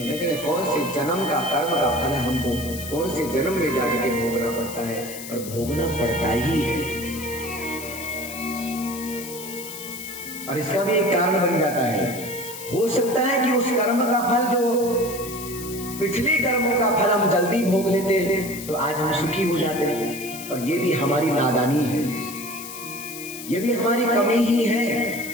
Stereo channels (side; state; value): left; noise; hiss, 11 dB below the sound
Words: लेकिन कौन से जन्म का कर्म का फल हमको कौन से जन्म में जाकर के भोगना पड़ता है, और भोगना पड़ता ही है। और इसका भी एक कारण बन जाता है। हो सकता है कि उस कर्म का फल जो पिछले कर्मों का फल हम जल्दी भोग लेते तो आज हम सुखी हो जाते, और ये भी हमारी नादानी है, ये भी हमारी कमी ही है,